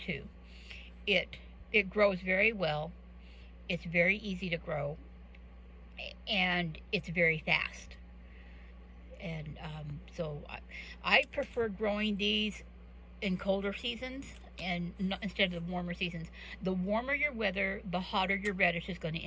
It grows very well. It's very easy to grow, and it's very fast. And so I prefer growing these in colder seasons and instead of the warmer seasons. The warmer your weather, the hotter your radish is going to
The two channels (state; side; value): identical; both; correlation 1.00